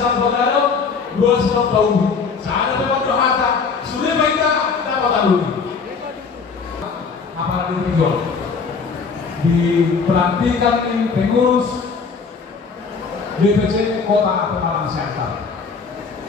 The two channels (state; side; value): quieter; right; 5.2 dB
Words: bergadang, dua skor tahu. Saya dapat berhata, sudah kita dapat dulu. Apalagi dijual, dipelantikan di pengurus DPC Kota Pemalang Selatan.